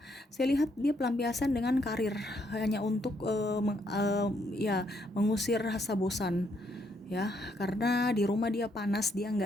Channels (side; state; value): both; normal; correlation 0.73